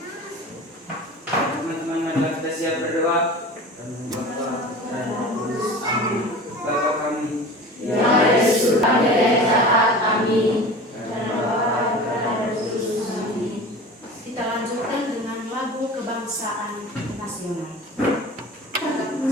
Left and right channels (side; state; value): both; normal; correlation 0.36